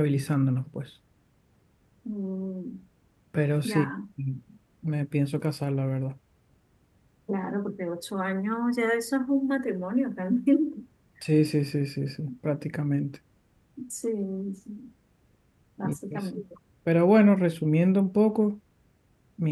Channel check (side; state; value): both; identical; correlation 1.00